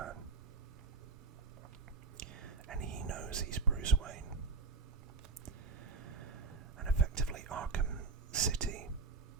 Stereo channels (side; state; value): left; quieter; 3.9 dB